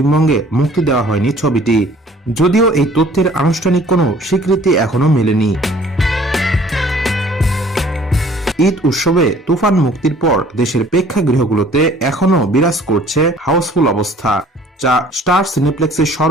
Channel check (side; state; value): both; normal; correlation 0.54